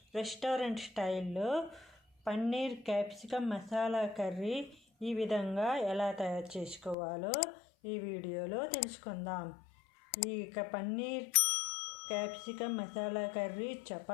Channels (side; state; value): right; drops out; at 7.0 s